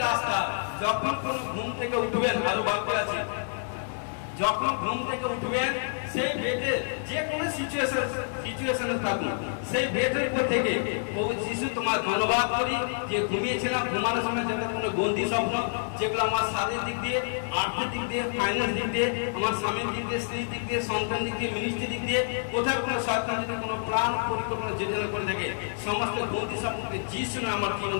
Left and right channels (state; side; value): silent; right; 59 dB below the other